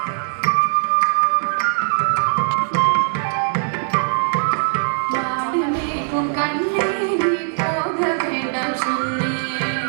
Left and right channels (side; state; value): left; silent; digital silence